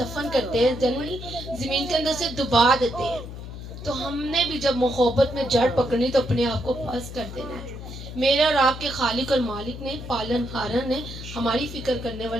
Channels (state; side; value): noise; left; hum, 10 dB below the sound